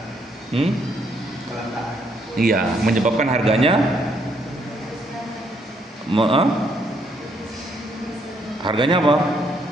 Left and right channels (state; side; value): normal; both; correlation 0.71